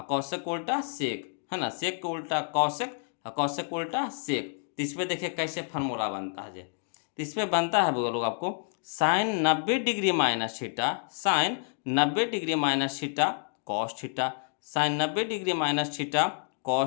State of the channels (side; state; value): right; silent; 58 dB below the other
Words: कौशिक को उल्टा सेक, है ना, सेक को उल्टा कौशिक और कौशिक को उल्टा सेक। तो इस पर देखिए कैसे फार्मूला बनता है। तो इस पर बनता है वो लोग आपको sine 90 degree minus theta, sine 90 degree minus theta cos theta, sine 90 degree minus theta